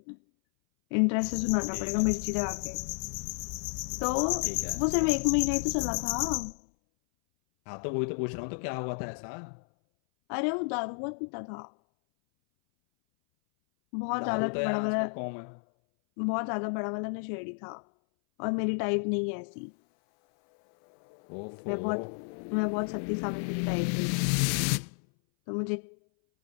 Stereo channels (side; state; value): right; silent; 57 dB below the other